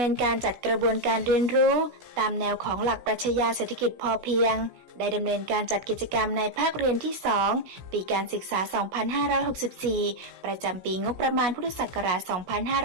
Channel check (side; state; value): left; late; 16 ms